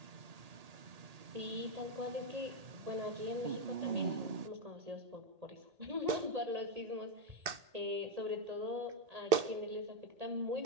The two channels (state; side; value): late; left; 1.8 ms